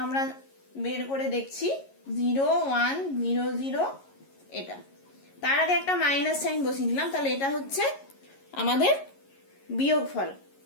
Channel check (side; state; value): right; late; 11 ms